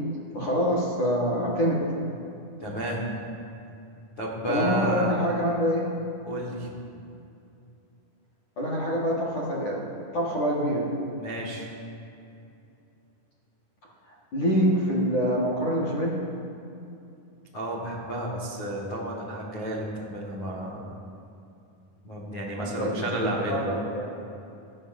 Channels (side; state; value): right; late; 9.5 ms